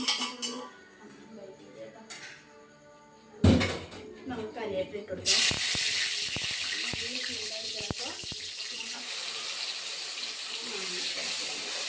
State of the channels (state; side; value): identical; both; correlation 1.00